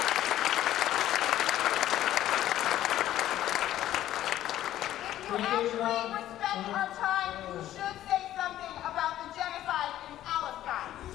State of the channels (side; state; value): right; quieter; 13.0 dB